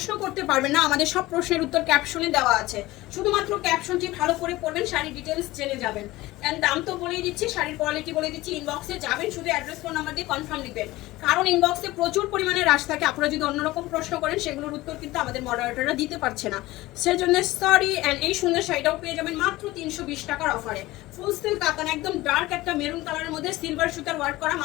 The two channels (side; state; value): right; quieter; 18.6 dB